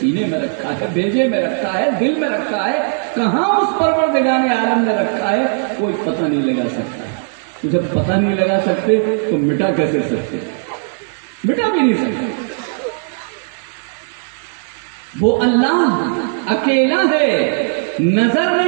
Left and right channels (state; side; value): silent; left; digital silence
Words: میں رکھا ہے، بھیجے میں رکھا ہے، دل میں رکھا ہے، کہاں اس پروردگار عالم نے رکھا ہے کوئی پتہ نہیں لگا سکتا. جب پتہ نہیں لگا سکتے تو مٹا کیسے سکتے؟ مٹا بھی نہیں سکتے. وہ اللہ اکیلا ہے، نظر